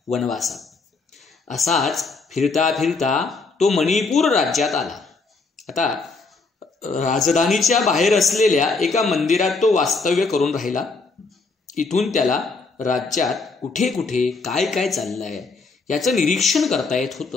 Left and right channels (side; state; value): right; quieter; 4.1 dB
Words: वनवासात। असाच फिरता फिरता तो मणिपूर राज्यात आला। आता राजधानीच्या बाहेर असलेल्या एका मंदिरात तो वास्तव्य करून राहिला। इथून त्याला राज्यात कुठे कुठे काय काय चाललंय याचं निरीक्षण करता येत